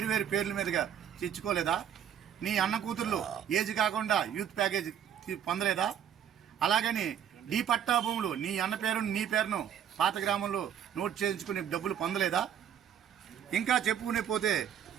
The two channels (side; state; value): left; quieter; 9.2 dB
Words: పేర్ల మీదుగా తెచ్చుకోలేదా? నీ అన్న కూతుర్లు ఏజ్ కాకుండా యూత్ ప్యాకేజ్ పొందలేదా? అలాగని నీ పట్టా భూములు నీ అన్న పేరును నీ పేరును పాత గ్రామంలో నోట్ చేయించుకునే డబ్బులు పొందలేదా? ఇంకా చెప్పుకునే పోతే